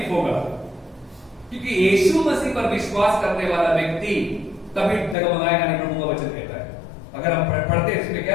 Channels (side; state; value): right; drops out; at 5.2 s